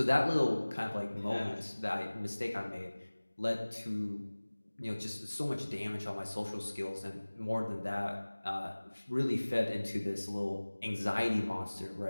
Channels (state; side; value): inverted; both; correlation -1.00